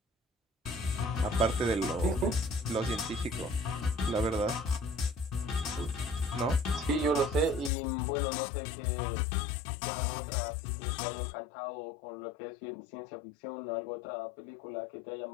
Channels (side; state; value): right; drops out; at 7.7 s